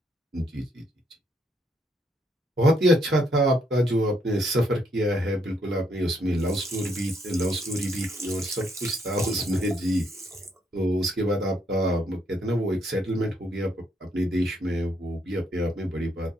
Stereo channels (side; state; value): both; normal; correlation 0.73